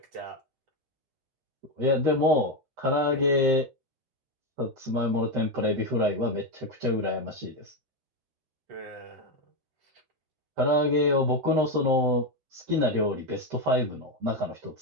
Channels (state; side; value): late; left; 13 ms